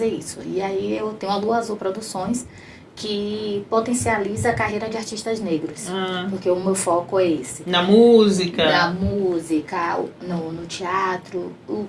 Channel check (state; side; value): identical; both; correlation 1.00